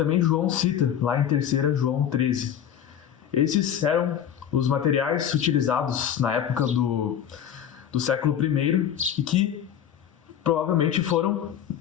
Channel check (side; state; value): right; quieter; 9.4 dB